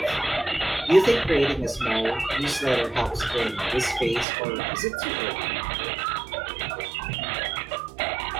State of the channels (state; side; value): drops out; left; at 4.2 s